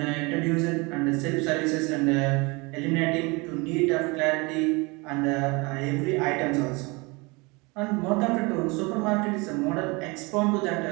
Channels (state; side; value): quieter; left; 27.0 dB